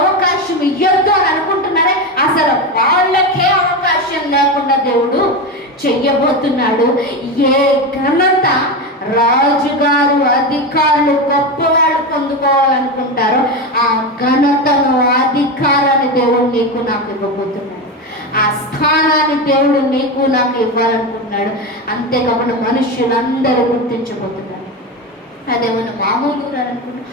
ఇవ్వద్దు అని అనుకుంటున్నారే, అసలు వాళ్ళకే అవకాశం లేకుండా దేవుడు చెయ్యబోతున్నాడు. ఏ ఘనత రాజుగారు అధికారులు గొప్పవాళ్ళు పొందుకోవాలనుకుంటారో ఆ ఘనతను అధికారాన్ని దేవుడు నీకు నాకు ఇవ్వబోతున్నాడు. ఆ స్థానాన్ని దేవుడు నీకు నాకు ఇవ్వాలనుకుంటున్నాడు. అంతేకాకుండా మనుష్యులందరూ గుర్తించబోతున్నారు. అదేమన్నా మామూలు అనుకుంటున్నా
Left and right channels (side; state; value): both; normal; correlation 0.17